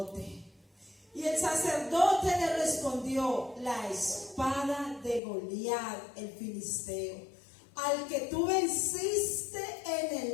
Y el sacerdote le respondió, la espada de Goliat, el filisteo, al que tú venciste en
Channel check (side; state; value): right; drops out; at 5.2 s